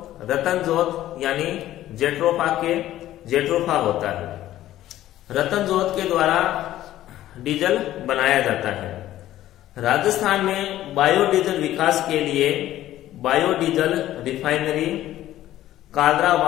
रतनजोत यानी जेट्रोफा होता है। रतनजोत के द्वारा डीजल बनाया जाता है। राजस्थान में बायोडीजल विकास के लिए बायोडीजल रिफाइनरी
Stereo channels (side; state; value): right; quieter; 13.7 dB